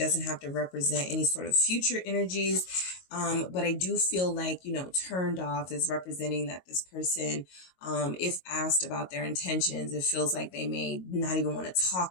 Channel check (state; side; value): late; right; 22 ms